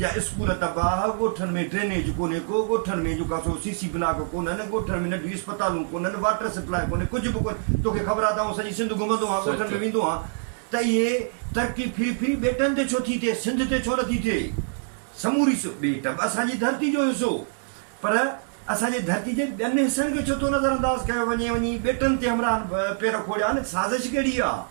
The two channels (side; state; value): left; silent; digital silence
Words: स्कूल तबाह, ॻोठनि में ड्रेनेज कोन्हे को, ॻोठनि में जेका सो सीसी ब्लॉक कोन्हनि, ॻोठनि में नंढियूं अस्पतालूं कोन्हनि, वाटर सप्लाई कोन्हे, कुझु बि कोन्हे। तोखे ख़बर आहे त सॼी सिंध घुमंदो आहे, ॻोठनि में वेंदो आहे, त इहे तरक़ी फिरी ॿेटनि ते छो थी थिए, सिंध ते छो नथी थिए? समूरी ॿेट असांजी धरती जो हिसो, पर असांजे धरती जे ॿियनि हिसनि खे छो थो नज़रअंदाज़ कयो वञे, वञी ॿेटनि ते हमरा पेर खोड़िया न? साज़िश कहिड़ी